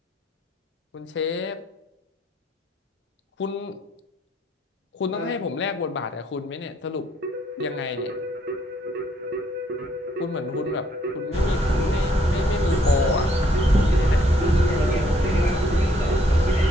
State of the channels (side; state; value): both; normal; correlation 0.68